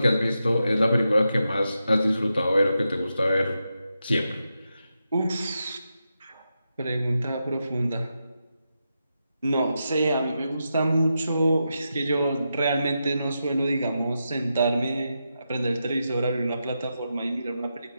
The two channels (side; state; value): both; inverted; correlation -0.87